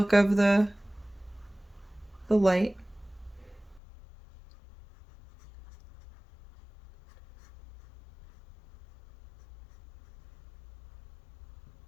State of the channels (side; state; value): right; drops out; at 3.8 s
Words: of the light.